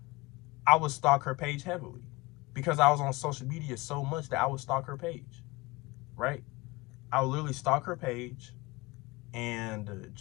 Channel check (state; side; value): quieter; right; 22.9 dB